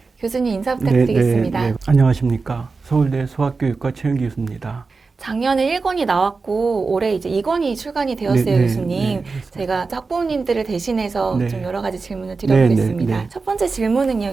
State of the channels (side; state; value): left; quieter; 4.3 dB